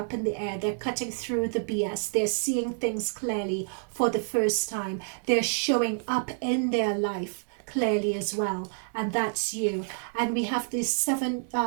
in the air. They're cutting through the BS. They're seeing things clearly for the first time. They're showing up in their life clearly as well, and that's you. And we have these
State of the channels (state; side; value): silent; left; digital silence